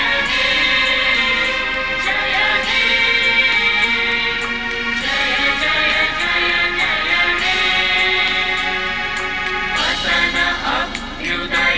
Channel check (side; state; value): both; identical; correlation 1.00